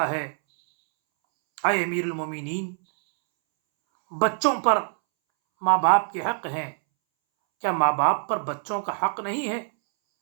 ہے، اے امیر المومنین، بچوں پر ماں باپ کے حق ہیں، کیا ماں باپ پر بچوں کا حق نہیں ہے؟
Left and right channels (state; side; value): silent; left; 62 dB below the other